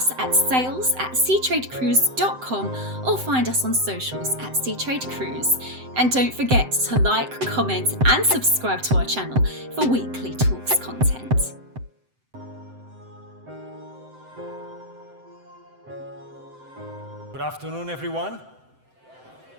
at sales@seatradecruise.com or find us on socials at Seatrade Cruise. And don't forget to like, comment and subscribe to our channel for weekly talks content. Good afternoon, everyone.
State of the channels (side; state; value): left; late; 7.8 ms